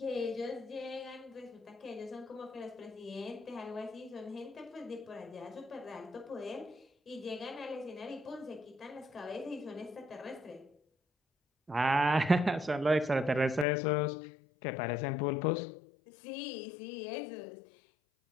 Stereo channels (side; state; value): right; drops out; at 13.7 s